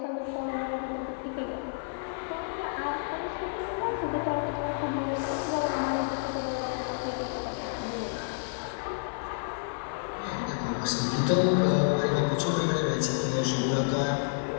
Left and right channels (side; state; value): right; silent; 58 dB below the other